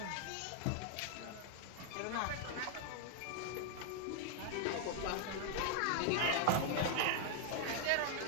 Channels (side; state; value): both; different; correlation 0.00